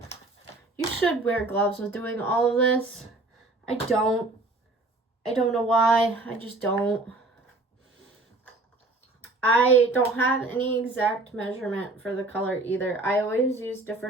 You should wear gloves with doing all of this. I don't know why, I just don't. I don't have any exact measurement for the color either. I always use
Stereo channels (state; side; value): quieter; left; 3.0 dB